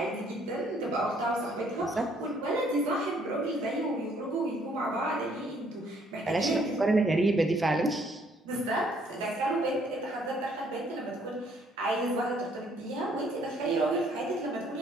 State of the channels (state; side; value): normal; both; correlation 0.64